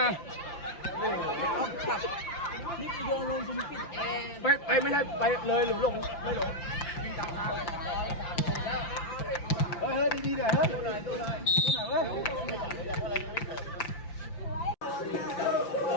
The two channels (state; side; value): late; right; 5.8 ms